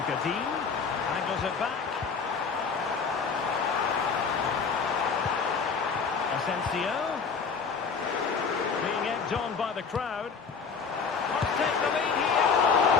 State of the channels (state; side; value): quieter; right; 5.5 dB